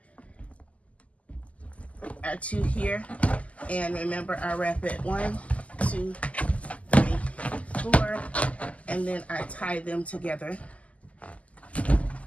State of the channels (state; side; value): late; right; 0.068 ms